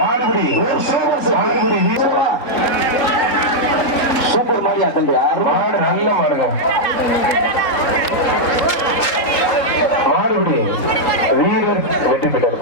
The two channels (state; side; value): late; right; 3.8 ms